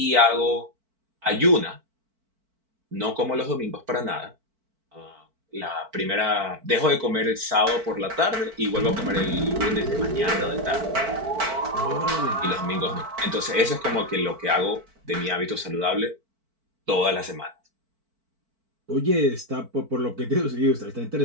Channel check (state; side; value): late; left; 4.5 ms